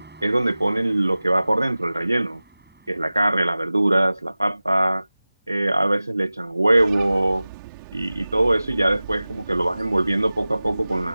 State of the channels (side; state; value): both; inverted; correlation -0.97